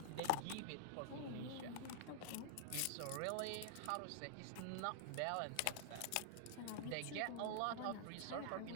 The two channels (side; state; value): both; different; correlation 0.00